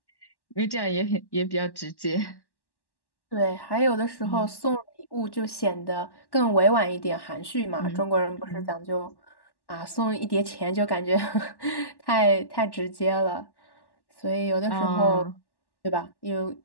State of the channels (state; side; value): late; right; 1.1 ms